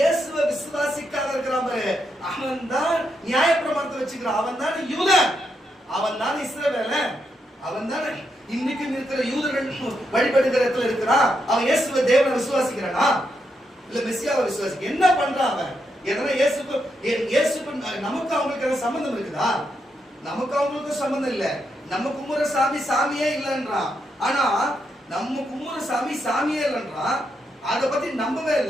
விசுவாசிக்காத இருக்கிறான் பாரு, அவன் தான் நியாயப்பிரமாணத்தை வச்சுக்கிறான். அவன் தான் யூதன், அவன் தான் இஸ்ரவேலன், அவன் தான் இன்னைக்கும் இருக்கிற யூதர்கள் வழிபடுகிற இடத்துல இருக்கிறான். அவன் இயேசுவை தேவனை விசுவாசிக்கிறானா? இல்ல மெசியாவை விசுவாசிக்க என்ன பண்றான் அவன்? எதனா இயேசுக்கு நமக்கு அவங்களுக்கு எதாவது சம்பந்தம் இருக்குதா? நமக்கு அவங்களுக்கு சம்பந்தம் இல்ல. நம்ம கும்புற சாமி சாமியே இல்லைன்றான். ஆனா நம்ம கும்புற சாமி சாமியே இல்லைன்றான். அத பத்தி நம்பவே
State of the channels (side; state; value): both; normal; correlation 0.81